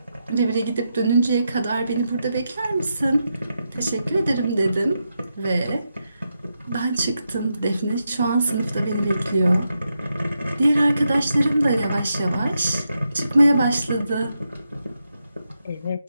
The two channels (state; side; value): inverted; both; correlation -0.85